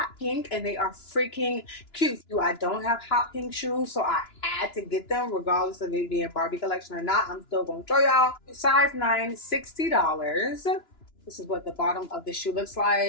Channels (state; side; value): late; right; 2.9 ms